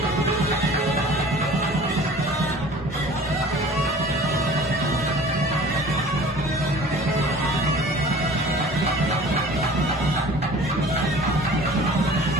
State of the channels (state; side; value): normal; both; correlation 0.45